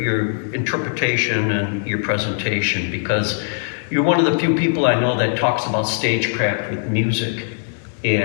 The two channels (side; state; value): right; silent; digital silence